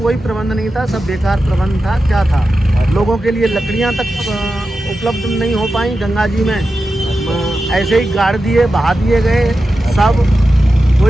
प्रबंध नहीं था, सब बेकार प्रबंध था। क्या था, लोगों के लिए लकड़ियां तक उपलब्ध नहीं हो पाई गंगा जी में, ऐसे ही गाड़ दिए, बहा दिए गए सब,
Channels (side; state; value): both; normal; correlation 0.91